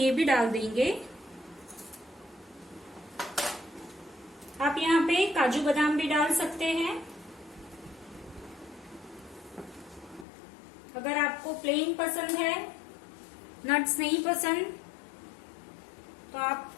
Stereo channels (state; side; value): drops out; right; at 10.2 s